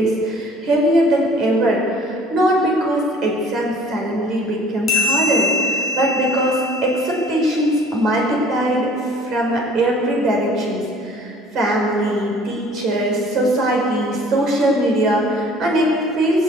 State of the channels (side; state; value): both; normal; correlation 0.52